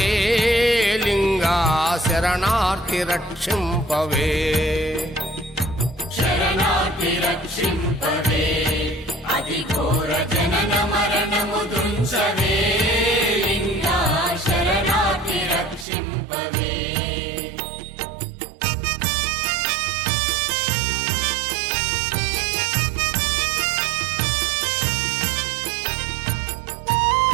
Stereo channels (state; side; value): drops out; left; at 15.9 s